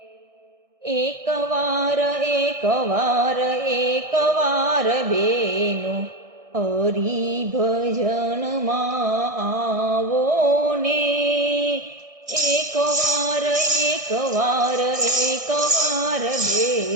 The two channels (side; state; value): left; late; 1.6 ms